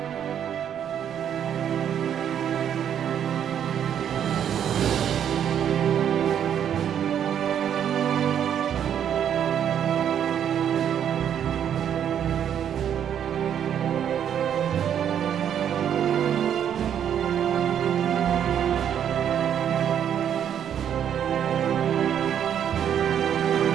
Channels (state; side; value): quieter; left; 9.2 dB